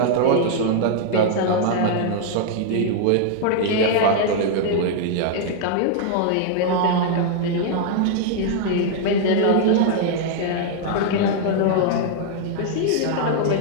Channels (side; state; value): both; different; correlation 0.00